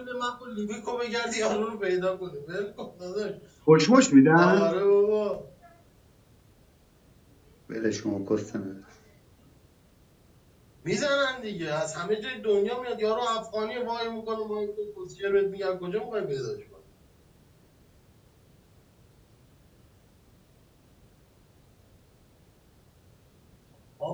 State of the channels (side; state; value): both; identical; correlation 1.00